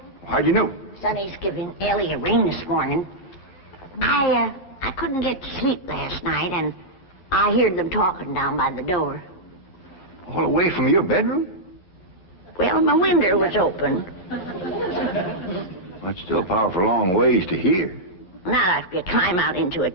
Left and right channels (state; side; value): late; right; 11 ms